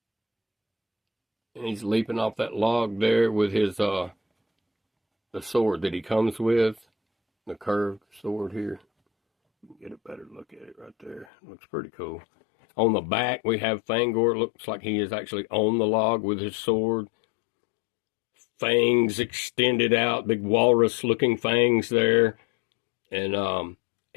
And he's leaping off that log there with his the sword that he comes with, the curved sword here. Get a better look at it right there. Looks pretty cool. On the back, we have Fang-Or. Looks like he is actually on the log with his sword. Fangs extended out, big walrus-looking fangs there. And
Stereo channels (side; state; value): right; drops out; at 11.2 s